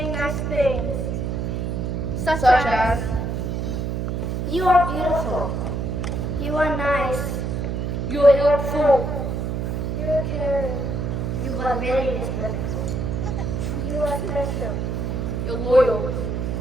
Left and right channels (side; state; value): right; noise; hum, 1 dB below the sound